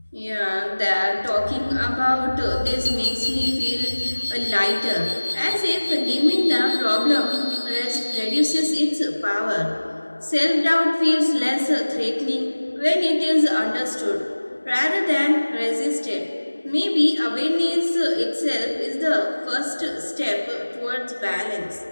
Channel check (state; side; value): inverted; both; correlation -1.00